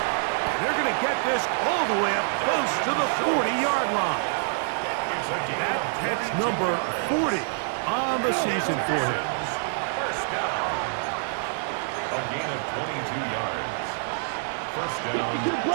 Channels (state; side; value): silent; left; digital silence